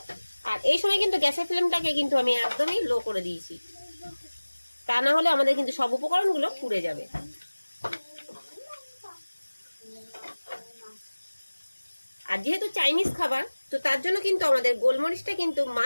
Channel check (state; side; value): inverted; both; correlation -1.00